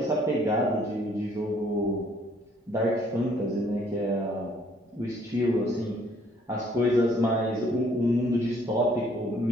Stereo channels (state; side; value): normal; both; correlation 0.63